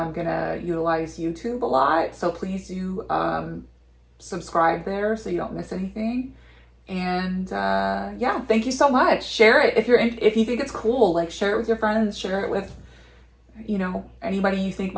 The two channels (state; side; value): identical; both; correlation 1.00